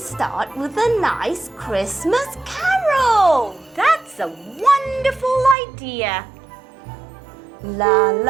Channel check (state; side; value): drops out; left; at 5.6 s